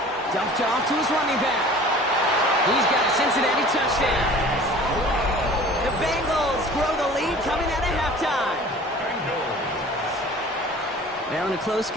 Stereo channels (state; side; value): normal; both; correlation 0.45